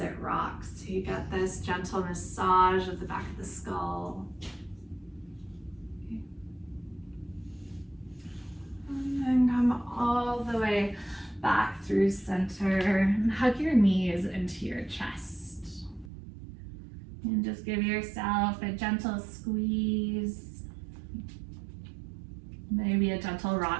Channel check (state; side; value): drops out; left; at 16.1 s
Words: rocks, so you get this gentle massage of the back of the skull. And then come all the way back through center and hug your knees into your chest. And just give yourself a gentle squeeze. Maybe a gentle